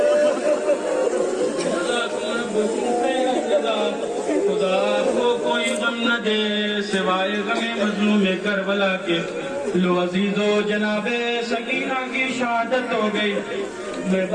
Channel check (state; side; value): identical; both; correlation 1.00